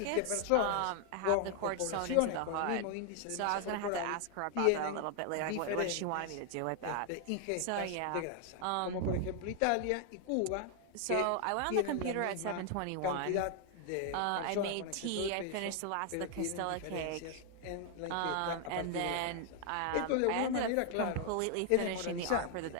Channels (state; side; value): different; both; correlation 0.00